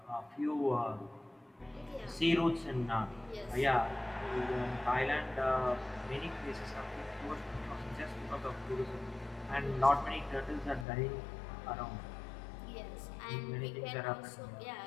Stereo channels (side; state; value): right; drops out; at 10.9 s